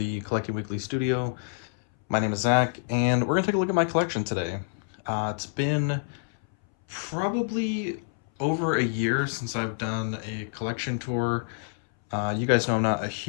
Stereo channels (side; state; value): right; silent; 60 dB below the other